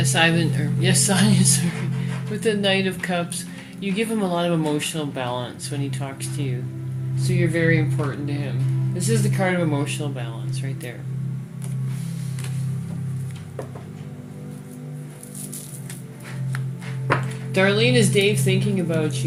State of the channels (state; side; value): identical; both; correlation 1.00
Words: Ivan, or yes, Sonia, sorry. With the Knight of Cups, you give him a lot of emotional balance when he talks to you. So you're very important to him. This is the card of emotional balance right there. Darlene, is Dave thinking about